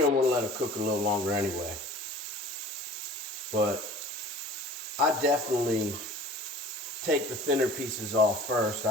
want to let it cook a little longer anyway. But I definitely take the thinner pieces off first.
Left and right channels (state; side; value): normal; both; correlation 0.45